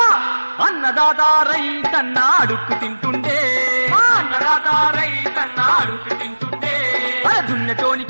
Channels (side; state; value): both; inverted; correlation -1.00